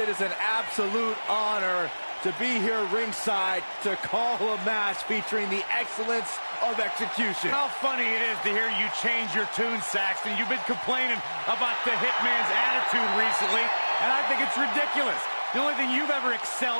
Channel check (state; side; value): inverted; both; correlation -1.00